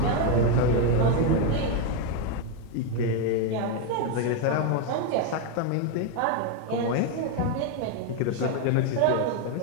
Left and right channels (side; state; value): both; different; correlation 0.02